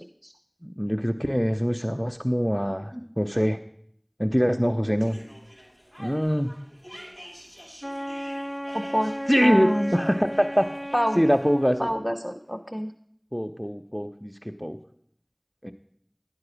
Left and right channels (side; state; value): both; identical; correlation 1.00